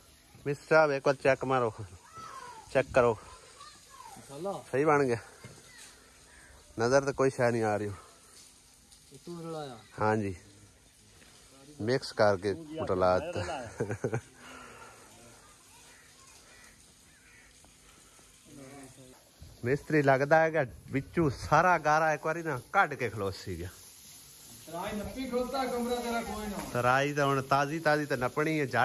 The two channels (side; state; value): both; identical; correlation 1.00